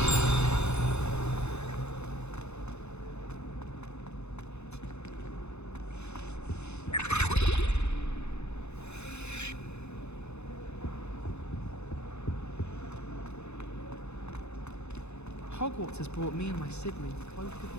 Hogwarts has brought me and my siblings closer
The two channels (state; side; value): late; right; 0.81 ms